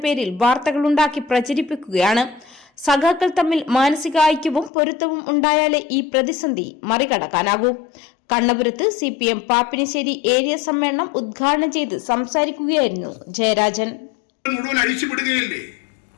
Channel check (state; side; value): drops out; right; at 4.7 s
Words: പേരിൽ വാർത്തകളുണ്ടാക്കി പ്രചരിപ്പിക്കുകയാണ്. സഖാക്കൾ തമ്മിൽ മാനസിക ഐക്യവും പൊരുത്തവും ഉണ്ടായാലേ ഈ പ്രതിസന്ധി മറികടക്കാനാകൂ. കണ്ണപുരത്ത് CPM പാപ്പിനിശ്ശേരി ഏരിയ സമ്മേളനം ഉദ്ഘാടനം ചെയ്ത് സംസാരിക്കുകയായിരുന്നു ജയരാജൻ. മുഴുവൻ അഴിച്ചുവിടുകയല്ലേ?